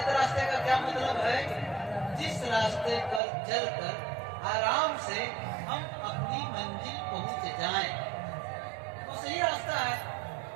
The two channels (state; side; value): drops out; left; at 3.2 s